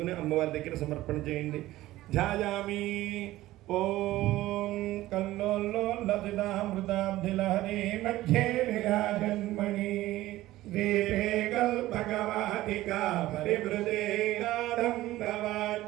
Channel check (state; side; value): quieter; left; 16.2 dB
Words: అమ్మవారి దగ్గర సమర్పణ చేయండి ధ్యాయామి ఓం కల్లోల్లసితామృతాబ్ధిలహరి మధ్యే విరాజన్మణి దీపే కల్పకవాటికా పరివృతే నాదంబవాద్యుజ్వలే